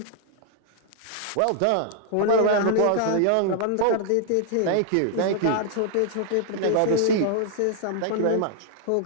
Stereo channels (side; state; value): both; different; correlation -0.01